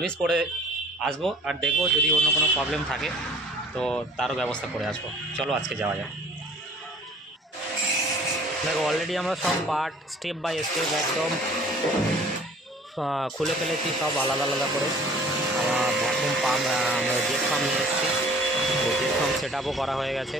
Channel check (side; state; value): both; normal; correlation 0.51